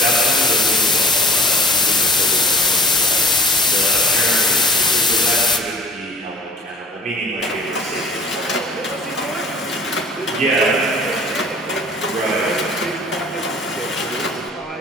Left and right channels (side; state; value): both; normal; correlation 0.50